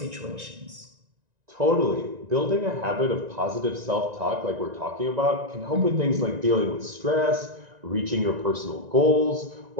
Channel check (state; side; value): late; left; 1.9 ms